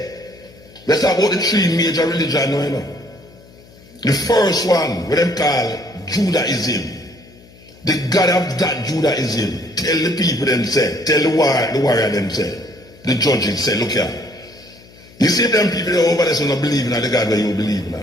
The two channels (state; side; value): noise; left; hum, 24 dB below the sound